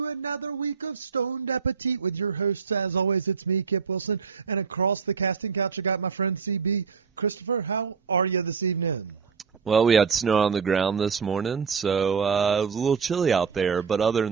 another week of Stoned Appetit with your hosts. As always, it's me, Kip Wilson, and across the casting couch, I got my friend CB. Christopher, how are you this evening? Well, we had snow on the ground this morning, so it was a little chilly out there. But other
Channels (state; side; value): quieter; left; 5.8 dB